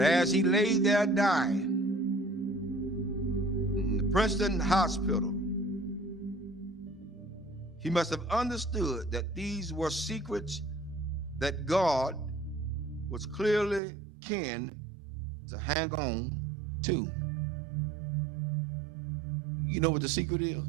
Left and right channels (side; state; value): left; drops out; at 13.8 s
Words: as he lay there dying in the Princeton hospital, he must have understood that these were secrets that God was clearly keen to hang on to. You know what the secret is?